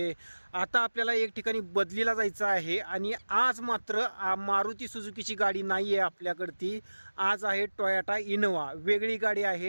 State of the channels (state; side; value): inverted; both; correlation -1.00